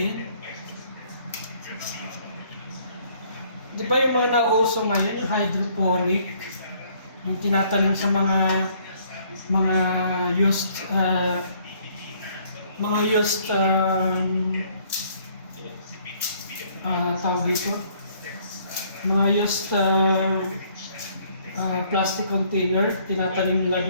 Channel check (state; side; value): inverted; both; correlation -0.63